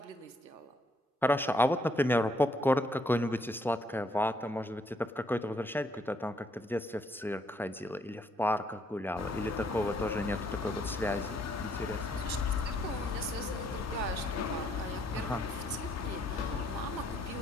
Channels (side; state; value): both; normal; correlation 0.70